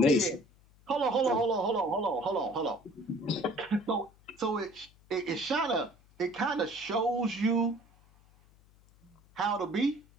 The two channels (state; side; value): noise; left; hum, 28 dB below the sound